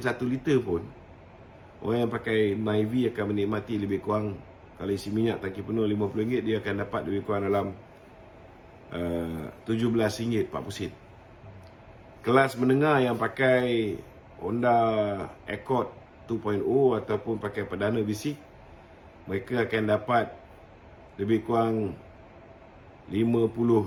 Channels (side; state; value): both; identical; correlation 1.00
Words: 1 liter pun, orang yang pakai Myvi akan menikmati lebih kurang, kalau isi minyak tangki penuh RM50, dia akan dapat lebih kurang dalam RM17.40. Kelas menengah yang pakai Honda Accord 2.0 ataupun pakai perdana bisik, mereka akan dapat lebih kurang